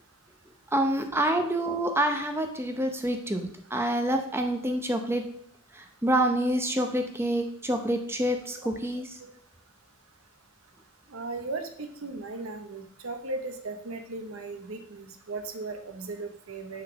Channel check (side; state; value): both; normal; correlation 0.56